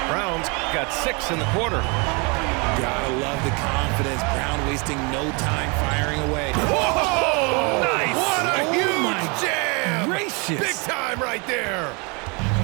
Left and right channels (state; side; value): quieter; left; 31.3 dB